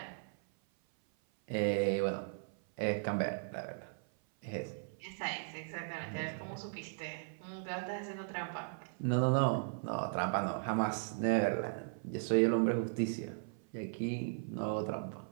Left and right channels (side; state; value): left; silent; 53 dB below the other